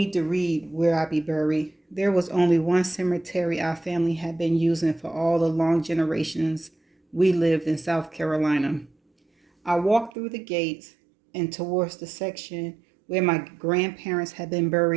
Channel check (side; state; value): left; drops out; at 10.1 s